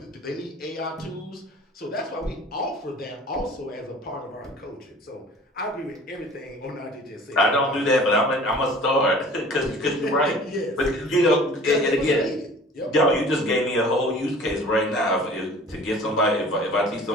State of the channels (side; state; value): both; normal; correlation 0.46